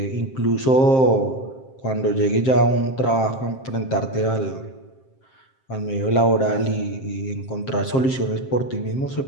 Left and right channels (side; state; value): right; late; 7.6 ms